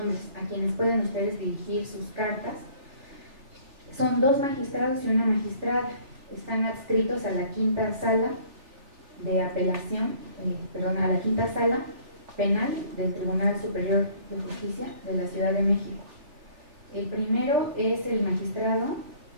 a quienes pueden ustedes dirigir sus cartas, son 2 magistrados y una magistrada. Están adscritos a la quinta sala de apelación, a la quinta sala penal del Tribunal Superior de Justicia de la Ciudad de México. El primero es el magistrado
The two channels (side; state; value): left; late; 3.4 ms